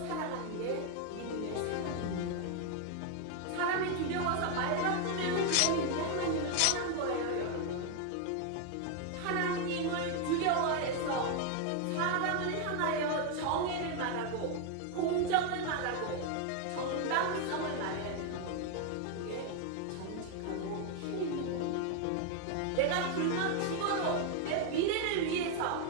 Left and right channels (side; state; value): both; different; correlation 0.01